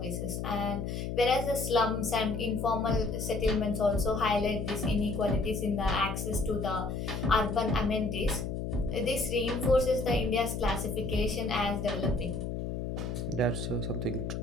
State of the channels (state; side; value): noise; left; hum, 3 dB below the sound